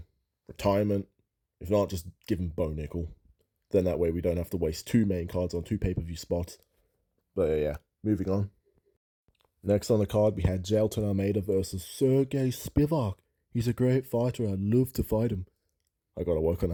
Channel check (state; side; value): identical; both; correlation 1.00